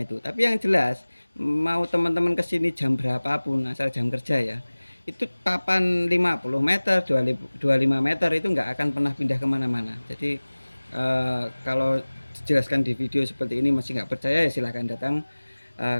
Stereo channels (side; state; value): both; inverted; correlation -1.00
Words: itu. Tapi yang jelas mau teman-teman kesini jam berapapun asal jam kerja ya, itu papan 50 meter, 25 meter itu nggak akan pernah pindah kemana-mana. Jadi kalau dijelaskan di video seperti ini masih nggak percaya ya silahkan datang